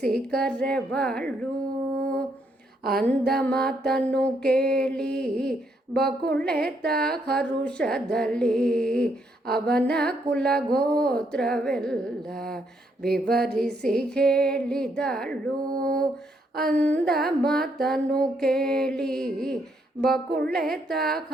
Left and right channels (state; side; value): normal; both; correlation 0.74